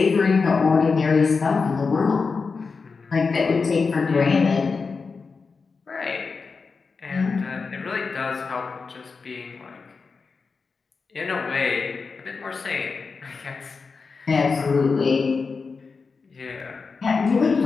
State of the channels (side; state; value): right; quieter; 4.7 dB